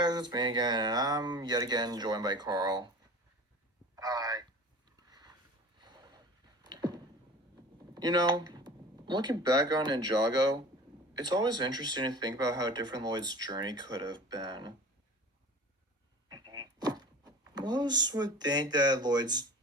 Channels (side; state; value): both; normal; correlation 0.39